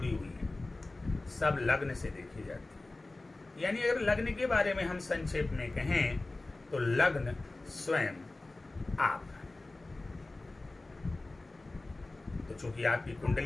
हुई हैं, सब लग्न से देखी जाती है। यानी अगर लग्न के बारे में हम संक्षेप में कहें तो लग्न स्वयं आप हैं। तो चूंकि आपकी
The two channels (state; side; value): quieter; right; 3.0 dB